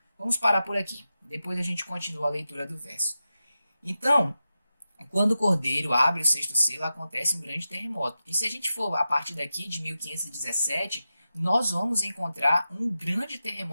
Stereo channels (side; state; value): both; inverted; correlation -0.92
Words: Vamos parar por aqui. Depois a gente continua a leitura do verso. Então, quando o cordeiro abre o sexto selo, acontece um grande terremoto. E se a gente for a partir daqui de 1517, nós vamos encontrar um grande